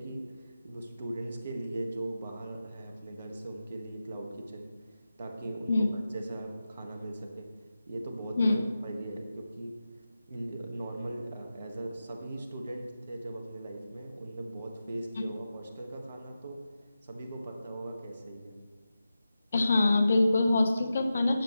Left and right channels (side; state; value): both; inverted; correlation -0.92